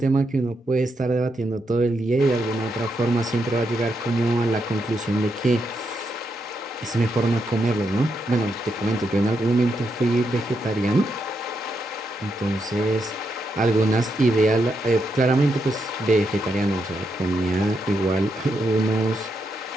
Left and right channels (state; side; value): normal; both; correlation 0.82